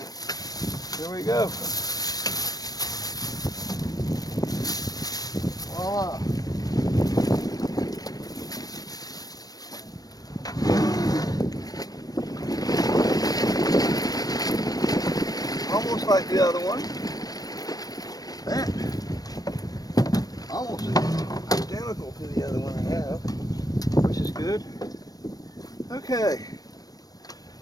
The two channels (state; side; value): late; right; 0.18 ms